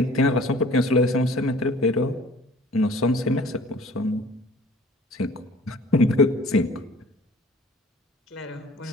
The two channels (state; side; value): normal; both; correlation 0.50